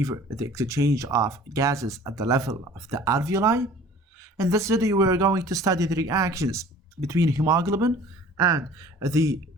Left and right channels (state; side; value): normal; both; correlation 0.48